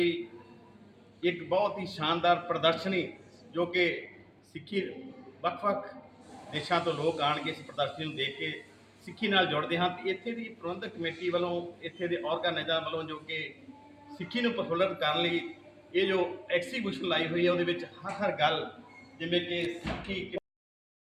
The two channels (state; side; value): identical; both; correlation 1.00